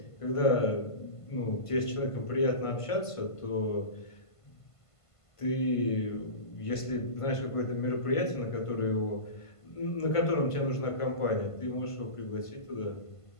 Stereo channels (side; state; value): right; late; 1.5 ms